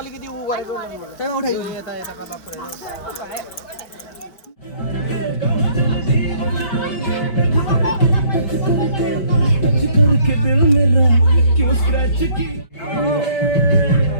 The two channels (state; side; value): late; right; 5.3 ms